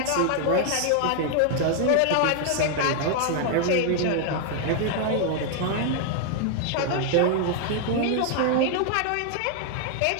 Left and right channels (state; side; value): different; both; correlation 0.00